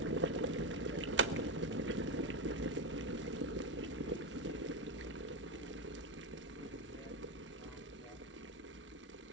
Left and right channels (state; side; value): normal; both; correlation 0.10